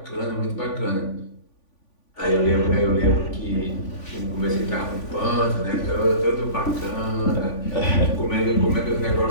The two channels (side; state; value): right; late; 3.5 ms